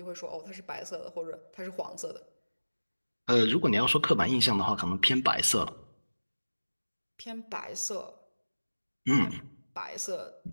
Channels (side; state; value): both; inverted; correlation -1.00